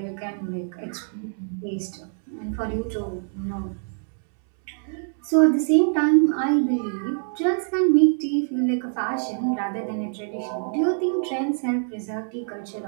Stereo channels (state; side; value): silent; left; 62 dB below the other